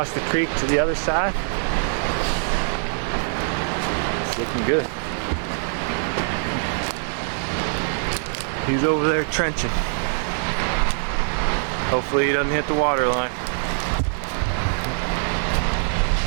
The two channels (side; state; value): left; silent; digital silence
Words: the creek to the other side. It's looking good. He's over there trenching. Hopefully he doesn't hit the water line.